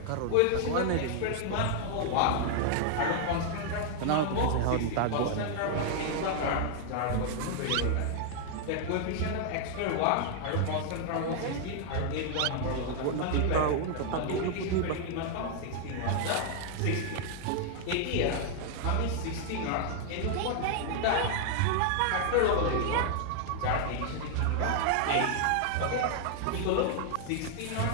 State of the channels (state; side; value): different; both; correlation 0.00